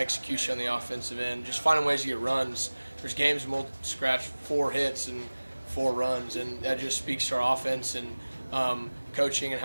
on the offensive end. Just finding ways to get runs. There's games we'll scratch 4 hits and 4 runs, and that just speaks to our offense and coaching and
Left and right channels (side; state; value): both; inverted; correlation -1.00